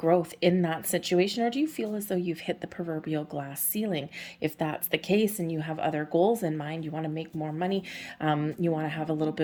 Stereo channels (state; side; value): identical; both; correlation 1.00